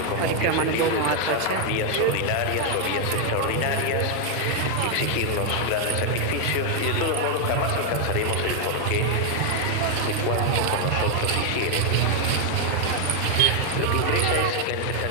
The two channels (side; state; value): both; different; correlation 0.01